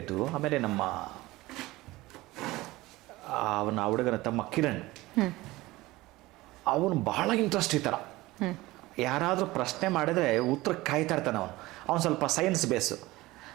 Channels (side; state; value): left; quieter; 19.3 dB